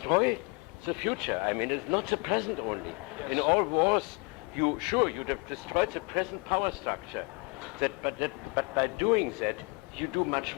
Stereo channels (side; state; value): right; quieter; 29.4 dB